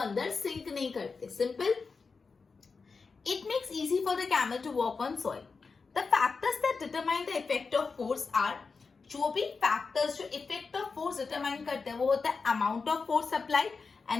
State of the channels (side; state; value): right; quieter; 4.7 dB